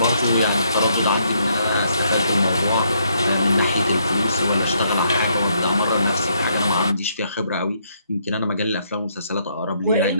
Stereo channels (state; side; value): inverted; both; correlation -0.72